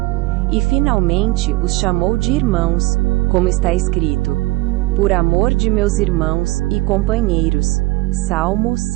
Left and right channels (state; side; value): quieter; left; 21.0 dB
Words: E finalmente os chamou de irmãos, como está escrito: por amor de meus irmãos e companheiros. Salmo